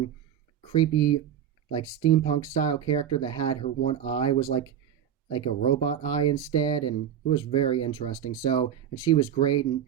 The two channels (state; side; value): quieter; left; 9.5 dB